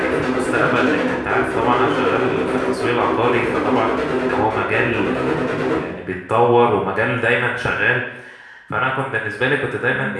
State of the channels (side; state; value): both; identical; correlation 1.00